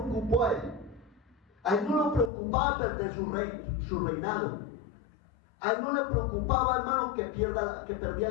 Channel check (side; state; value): right; drops out; at 2.3 s